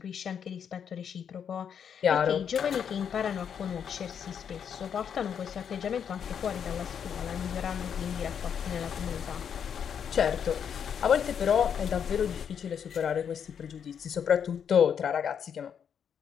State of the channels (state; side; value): quieter; right; 7.9 dB